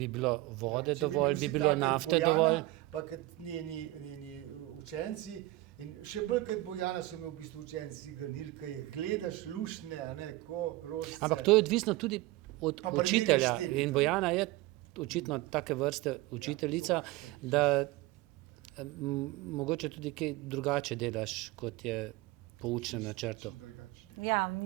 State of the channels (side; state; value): left; quieter; 18.5 dB